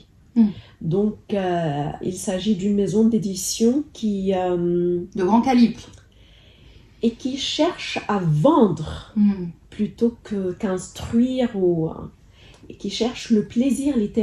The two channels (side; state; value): both; identical; correlation 1.00